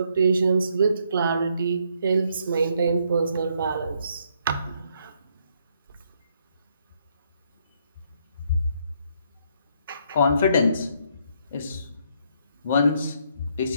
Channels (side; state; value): both; inverted; correlation -0.71